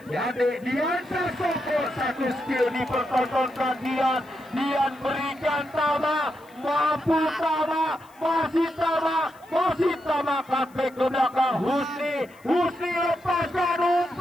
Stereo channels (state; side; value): noise; left; hiss, 29 dB below the sound